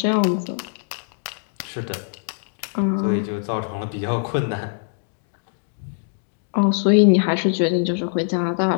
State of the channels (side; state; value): right; silent; digital silence